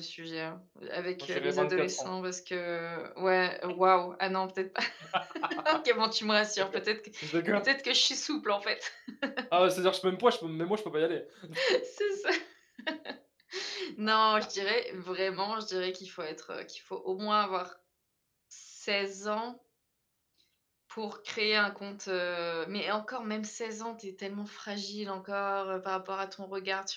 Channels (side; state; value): both; identical; correlation 1.00